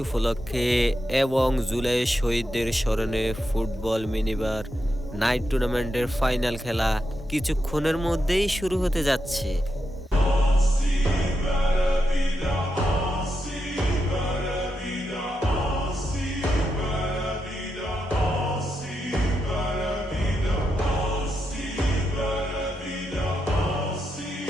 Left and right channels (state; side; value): normal; both; correlation 0.85